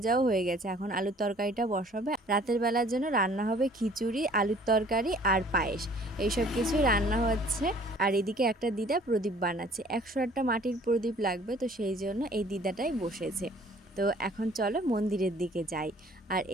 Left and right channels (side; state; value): both; normal; correlation 0.54